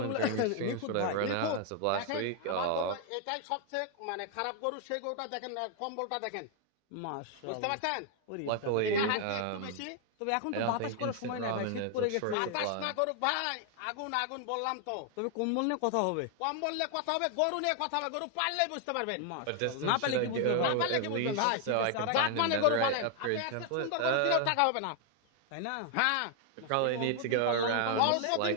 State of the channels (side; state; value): both; different; correlation 0.00